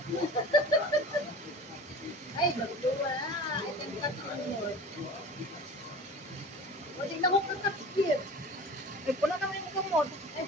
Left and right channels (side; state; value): both; normal; correlation 0.38